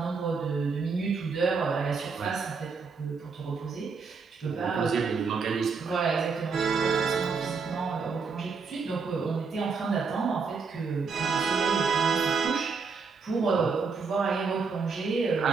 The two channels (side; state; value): left; quieter; 5.1 dB